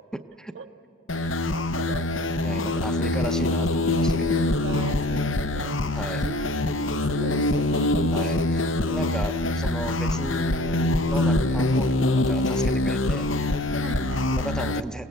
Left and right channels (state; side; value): normal; both; correlation 0.47